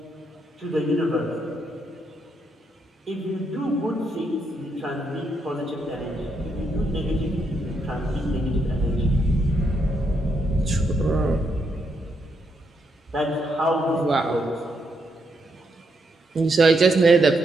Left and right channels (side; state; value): both; normal; correlation 0.78